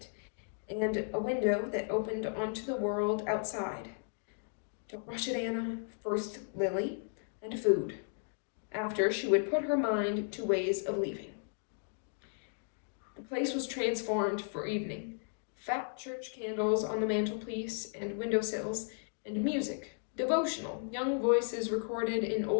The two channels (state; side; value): silent; right; digital silence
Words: and a window that opened onto the world outside. Don't rush it, Anna. First Lily, and food. After, she would put her mind to ways of leaving. The place was transformed for evening. Fat church candles on the mantelpiece and windowsills, and music, devotional, young voices recorded in